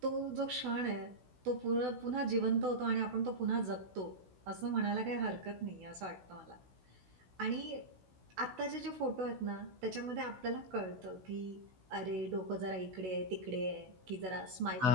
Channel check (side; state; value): left; late; 16 ms